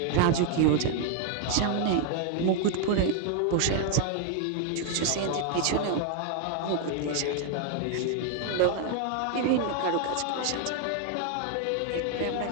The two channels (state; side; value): different; both; correlation 0.00